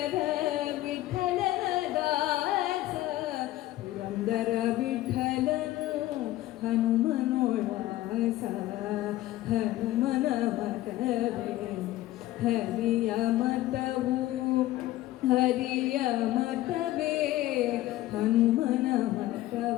ವಿಠಲನ ದಾಸ ಪುರಂದರ ವಿಠಲನು ಹನುಮನೋದಾಸ ಹನುಮನ ಮತವೇ ಹರಿಯ ಮತವು ಹರಿಯ ಮತವೇ ಹನುಮನ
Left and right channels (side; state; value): right; quieter; 15.6 dB